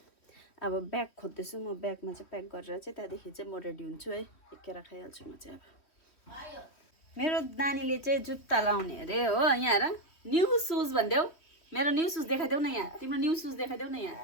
अब ब्याग खोज्दैछु म, ब्यागमा चाहिँ प्याक गरेर चाहिँ त्यहाँदेखि चाहिँ म रेडी हुन्छु है। एकेर खाइहाल्छु म चाहिँ। अब मेरो नानीले चाहिँ जुत्ता लाउने अरे हो। यहाँ हेर, न्यू सुज भनिदेऊ। मेरो न्यू सुज देखाइदेऊ न यहाँ, तिम्रो न्यू सुज देखाइदेऊ न यहाँ,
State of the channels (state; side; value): late; right; 3.1 ms